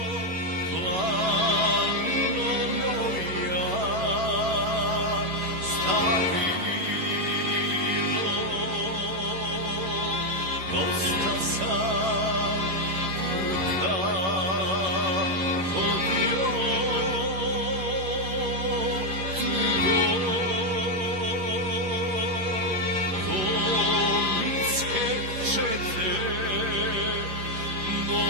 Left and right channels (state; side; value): late; left; 11 ms